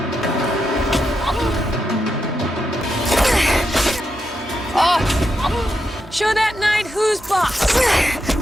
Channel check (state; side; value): normal; both; correlation 0.85